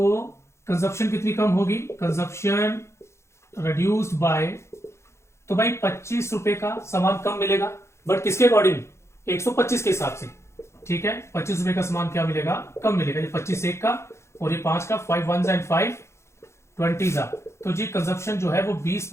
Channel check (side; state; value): right; late; 0.13 ms